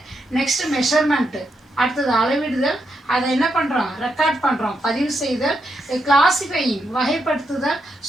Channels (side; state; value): both; normal; correlation 0.82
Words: நெக்ஸ்ட் மெஷர்மெண்ட்டு, அடுத்தது அளவிடுதல், அதை என்ன பண்ணுறோம் ரெக்கார்ட் பண்ணுறோம், பதிவு செய்தல், கிளாசிஃபையிங் வகைப்படுத்துதல்,